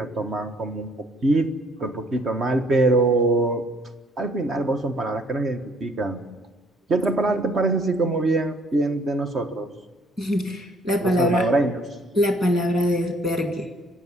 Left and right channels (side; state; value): both; normal; correlation 0.62